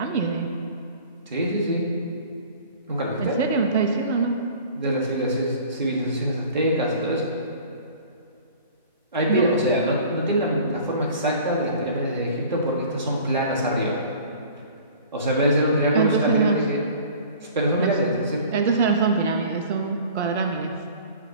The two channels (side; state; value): both; inverted; correlation -0.45